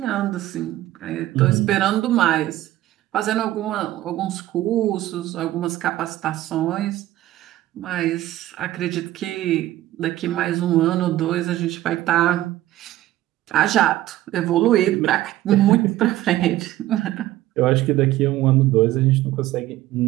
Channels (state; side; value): quieter; left; 14.9 dB